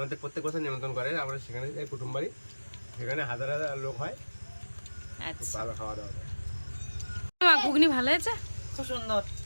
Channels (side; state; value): both; inverted; correlation -1.00